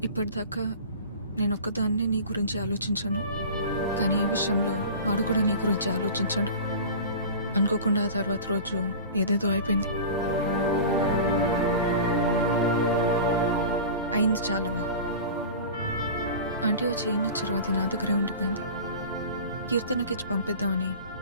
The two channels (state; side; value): inverted; both; correlation -0.36